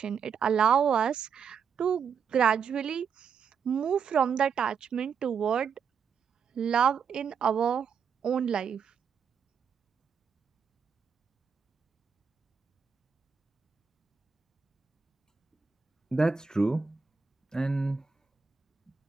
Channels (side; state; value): left; quieter; 6.5 dB